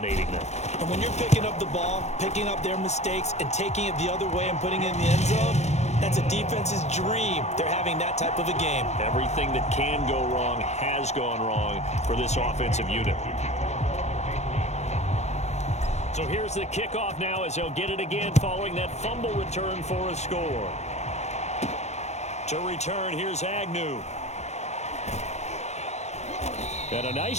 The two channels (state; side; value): late; right; 0.32 ms